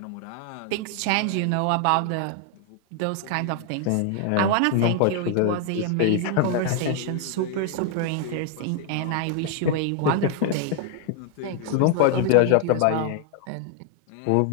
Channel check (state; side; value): different; both; correlation 0.00